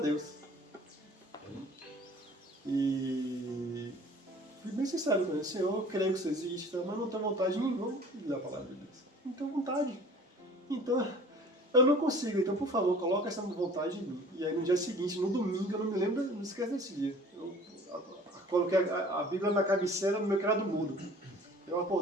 E fui bem sincero com ele, Senhor, eu creio que você existe, mas não tenho vontade nenhuma de ler a palavra de Deus. Não tenho vontade. Então, eu não consigo, então por favor, coloca essa vontade em mim. E aí no dia seguinte, no domingo, eu não me lembro, não esqueço desse dia. Eu coloquei a Bíblia na cabeceira no meu criado mudo. Eu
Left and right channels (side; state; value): both; normal; correlation 0.48